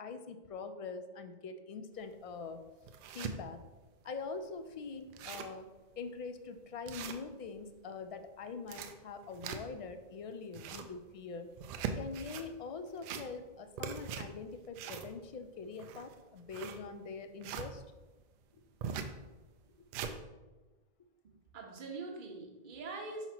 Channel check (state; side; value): late; left; 2.4 ms